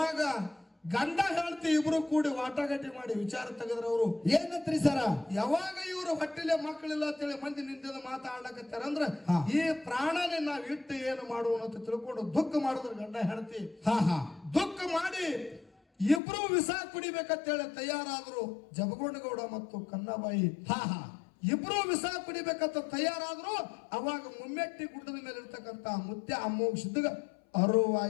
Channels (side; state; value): right; drops out; at 16.2 s